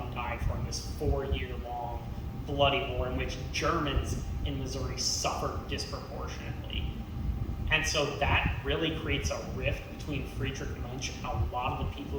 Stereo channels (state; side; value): identical; both; correlation 1.00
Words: and died for in this 4-year-long bloody war in which Germans in Missouri suffered disproportionately. And so that really creates a rift between Friedrich Muench and a lot of the people